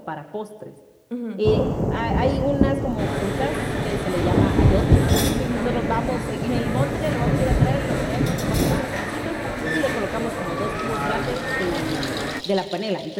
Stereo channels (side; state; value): both; identical; correlation 1.00